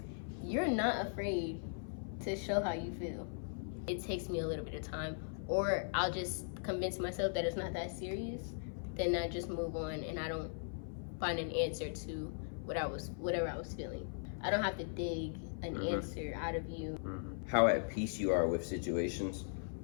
You're not afraid to show how you feel. It takes me a little bit of time, or I'll just convince myself that it's not that serious. Then I just move on, and I don't find an answer to whatever I was feeling. I don't have to dig an answer out of you. How at peace you are with situations.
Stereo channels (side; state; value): right; silent; 52 dB below the other